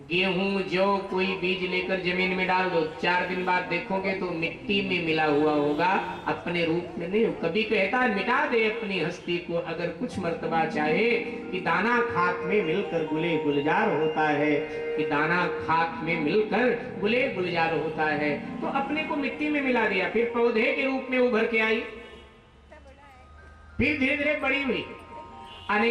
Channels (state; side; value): identical; both; correlation 1.00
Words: गेहूं जौ कोई बीज लेकर जमीन में डाल दो, 4 दिन बाद देखोगे तो मिट्टी में मिला हुआ होगा, अपने रूप में नहीं। कभी कहता है मिटा दे अपनी हस्ती को अगर कुछ मर्तबा चाहे, कि दाना खाक में मिलकर गुले गुलजार होता है, कि दाना खाक में मिलकर गुले गुलजार होता है। तो अपने को मिट्टी में मिला दिया, फिर पौधे के रूप में उभर के आई, फिर धीरे धीरे बड़ी हुई,